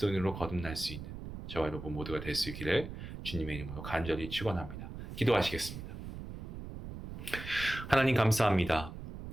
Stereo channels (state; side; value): noise; right; rumble, 10 dB below the sound